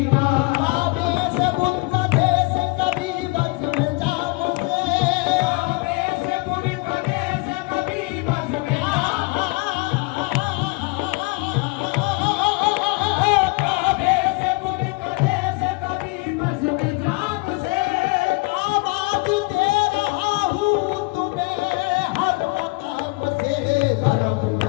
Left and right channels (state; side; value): quieter; right; 26.1 dB